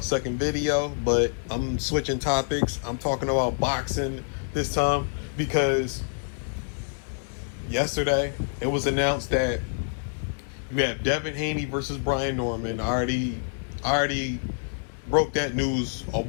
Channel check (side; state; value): right; silent; digital silence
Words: second video, but I'm switching topics. I'm talking about boxing this time because yesterday it was announced that we have Devin Haney versus Brian Norman. I already broke that news a